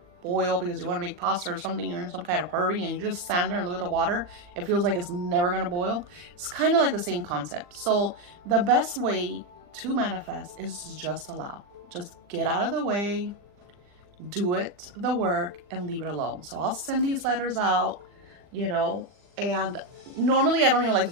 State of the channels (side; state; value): left; late; 40 ms